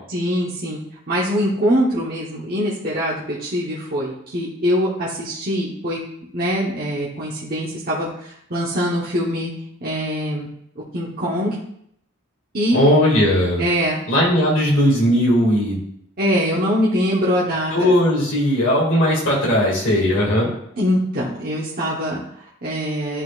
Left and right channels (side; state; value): both; normal; correlation 0.51